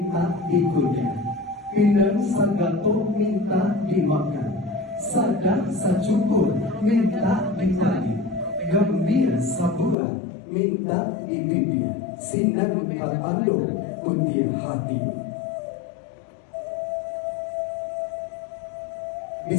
ikunya, pinang sagato minta dimakan, sadak sacukur minta ditani, gambir sabuah minta dibibir, sinar berando putih hati.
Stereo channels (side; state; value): right; drops out; at 10.0 s